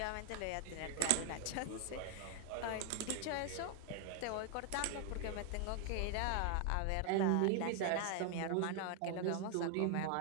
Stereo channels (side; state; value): both; different; correlation 0.00